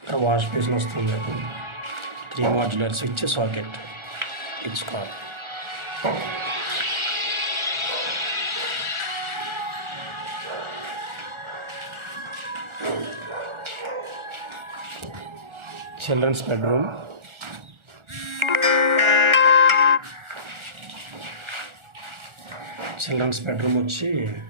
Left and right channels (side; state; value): left; late; 1.4 ms